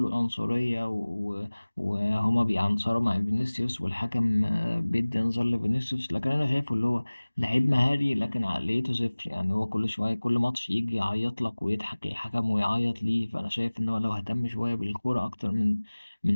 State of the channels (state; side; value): inverted; both; correlation -1.00